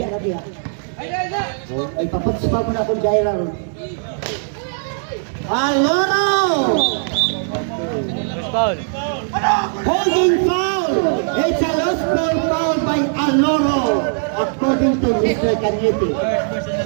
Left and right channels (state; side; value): silent; left; 67 dB below the other